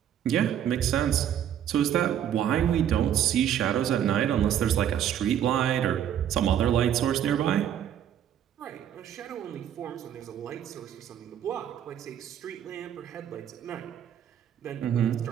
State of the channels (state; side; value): quieter; left; 10.0 dB